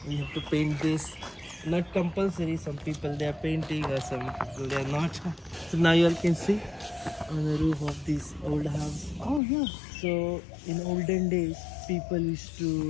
we have to paint this. Not compulsory, some people they are painting or some people they are not. So now you all can see on the roof of this old house. Oh yeah. So in olden days, people used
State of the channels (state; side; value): drops out; right; at 9.4 s